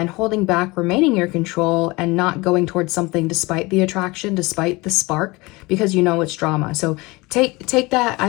holding back, remaining in your control, and not going towards something despite the attraction, despite the spark, because you know it's drama. So take that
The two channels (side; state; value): right; quieter; 23.5 dB